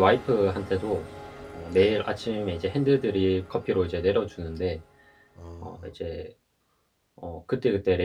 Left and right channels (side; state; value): both; identical; correlation 1.00